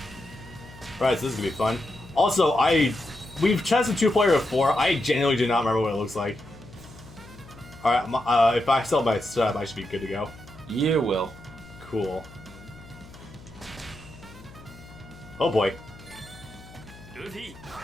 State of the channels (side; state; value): left; noise; hum, 20 dB below the sound